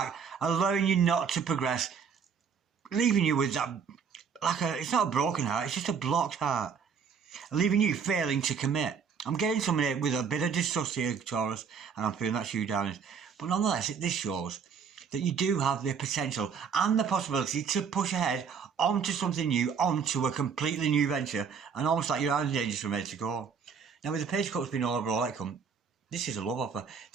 allowing you not to progress, leaving you with that, it's not a broken heart, it's just a blocked heart. Leaving you failing to commit. I'm getting somebody with a bit of distrust here, Taurus, and I'm feeling that's you, darling. But nonetheless, this shows that you do have the potential and the possibility to push ahead onto something new, onto a completely new venture, and almost like you're out of danger from ready to go. Now, with the Page of Cups being all overall outcome, this is a love offer.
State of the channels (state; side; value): quieter; left; 6.4 dB